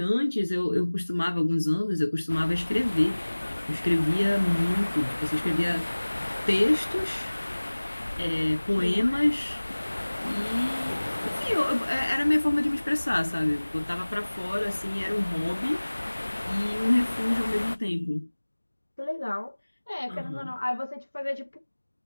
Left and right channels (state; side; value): inverted; both; correlation -1.00